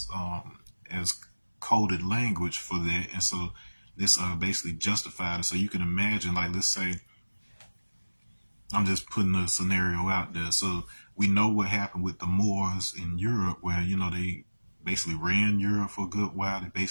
coded language for that, and so this basically justified it. So you can imagine, like, let's say I'm just putting a scenario out there. So we know what happened with the Moors in Europe, where they basically ran Europe for a good while. They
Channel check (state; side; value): inverted; both; correlation -1.00